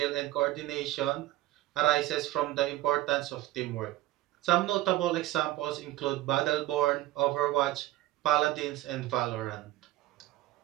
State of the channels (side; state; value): left; quieter; 16.0 dB